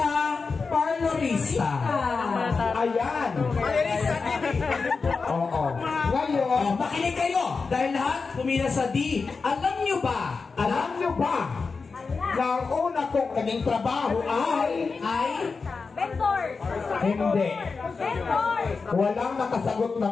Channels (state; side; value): quieter; right; 4.6 dB